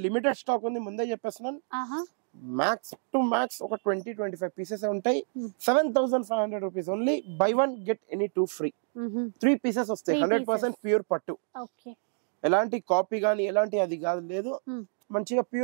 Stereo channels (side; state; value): left; silent; digital silence